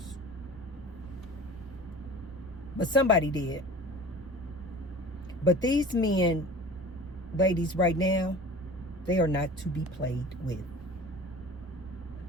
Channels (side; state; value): both; normal; correlation 0.40